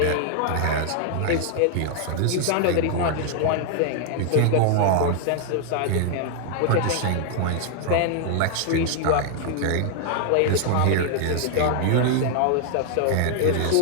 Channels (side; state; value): both; different; correlation 0.00